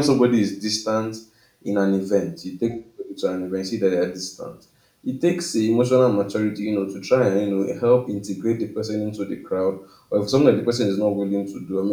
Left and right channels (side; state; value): both; identical; correlation 1.00